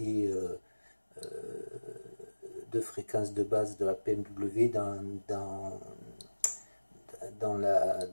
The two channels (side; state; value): both; inverted; correlation -1.00